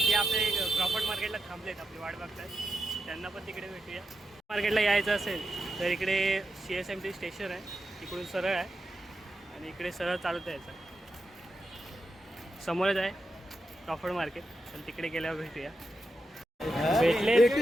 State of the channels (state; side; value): normal; both; correlation 0.88